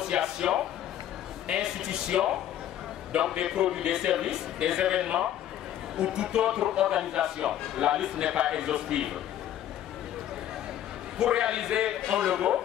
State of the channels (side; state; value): right; quieter; 11.5 dB